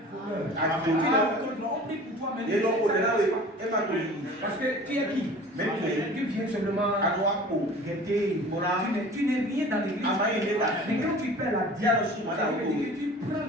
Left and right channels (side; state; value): both; normal; correlation 0.43